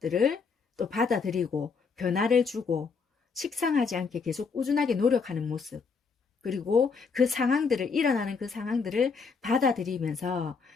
또 받아들이고 변화를 주고 식상하지 않게 계속 꾸준하게 노력하는 모습, 그리고 일어나는 그 상황들을 받아들이면서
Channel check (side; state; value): right; quieter; 5.2 dB